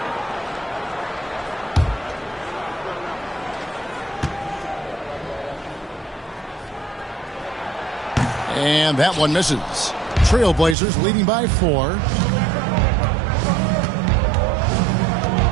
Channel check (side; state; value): left; drops out; at 10.8 s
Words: And that one misses. Trailblazers leading by 4.